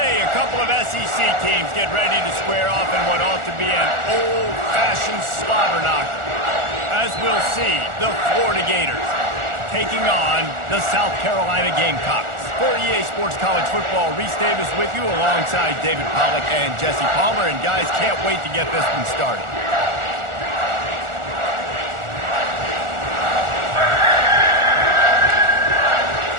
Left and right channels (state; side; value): late; left; 1.4 ms